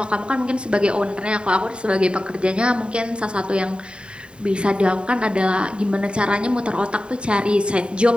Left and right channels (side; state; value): left; late; 0.052 ms